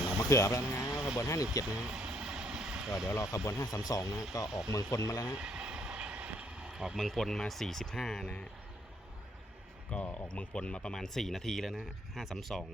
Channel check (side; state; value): both; normal; correlation 0.68